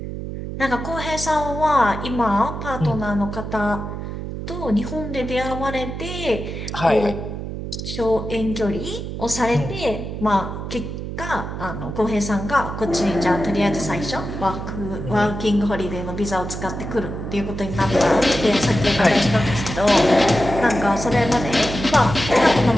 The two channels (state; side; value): noise; right; hum, 7 dB below the sound